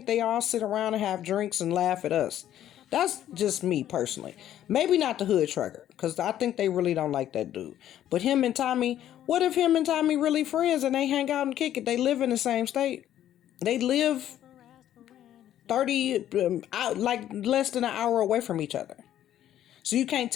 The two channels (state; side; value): quieter; right; 11.7 dB